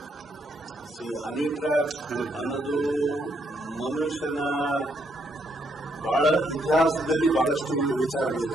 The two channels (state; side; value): normal; both; correlation 0.74